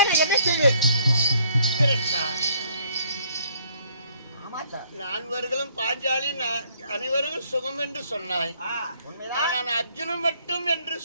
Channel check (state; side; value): inverted; both; correlation -0.64